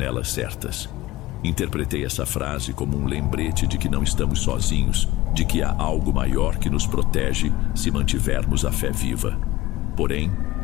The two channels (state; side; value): quieter; right; 17.4 dB